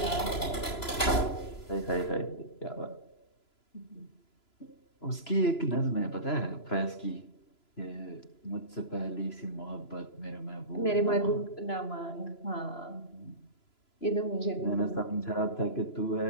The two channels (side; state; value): right; late; 3.0 ms